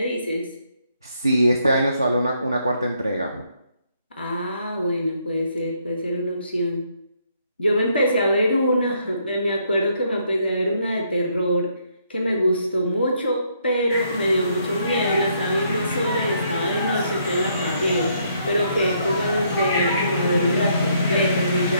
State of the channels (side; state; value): both; inverted; correlation -0.72